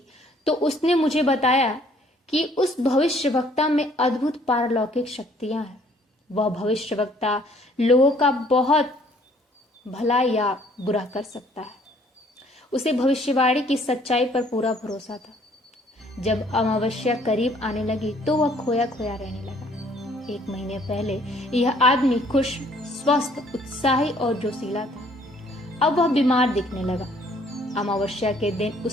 तो उसने मुझे बताया कि उस भविष्यवक्ता में अद्भुत पारलौकिक शक्तियां हैं। वह भविष्यवक्ता लोगों का बहुत भला या बुरा कर सकता है। उसे भविष्यवाणी की सच्चाई पर पूरा भरोसा था। जब अमावस्या करीब आने लगी तो वह खोया खोया रहने लगा। 1 महीने पहले यह आदमी खुश, स्वस्थ, उत्साही और जोशीला था। अब वह बीमार दिखने लगा। अमावस्या के दिन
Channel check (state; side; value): normal; both; correlation 0.61